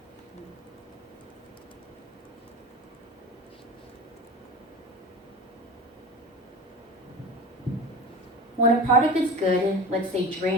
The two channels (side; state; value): both; normal; correlation 0.32